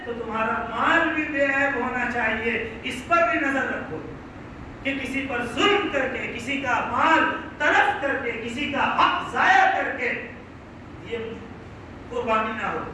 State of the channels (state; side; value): identical; both; correlation 1.00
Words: تو تمہارا مال بھی بے عیب ہونا چاہیے. اس پر بھی نظر رکھو کہ کسی پر ظلم کر کے، کسی کا مال تلف کر کے، کسی کا حق ضائع کر کے یہ قربانی نہ ہو.